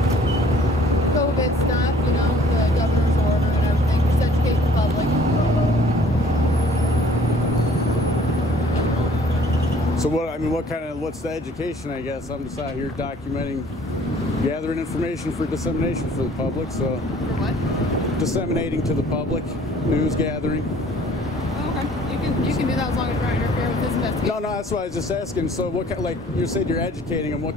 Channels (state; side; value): normal; both; correlation 0.55